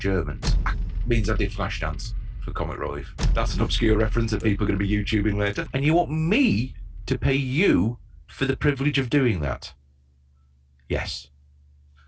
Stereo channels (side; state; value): both; identical; correlation 1.00